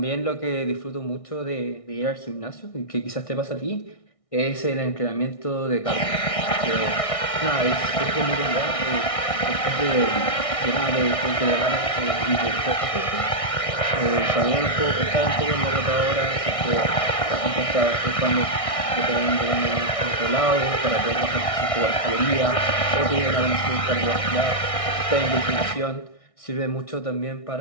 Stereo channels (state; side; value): late; right; 1.6 ms